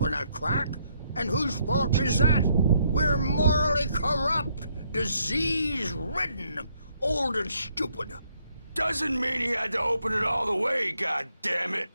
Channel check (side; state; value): both; inverted; correlation -0.72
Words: a crack. And whose fault is that? We're morally corrupt, disease-ridden, old and stupid. Doesn't mean he had to open it all the way, goddammit.